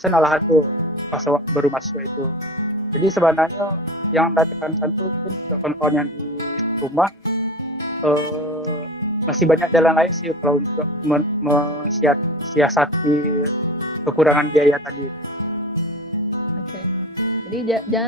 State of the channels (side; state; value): both; normal; correlation 0.34